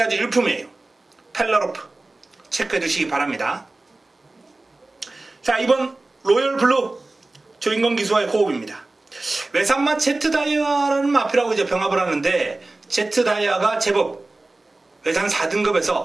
아주 일품이에요. 펠라로프 체크해 두시기 바랍니다. 자, 이번 로열블루 조인건 기수와의 호흡입니다. 외산마 제트다이아라는 마필하고 이제 병합을 하는데, 제트다이아가 제법 외산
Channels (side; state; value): left; quieter; 3.0 dB